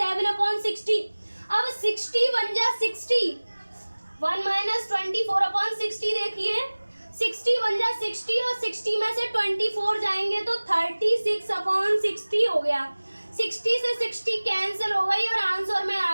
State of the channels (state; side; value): inverted; both; correlation -1.00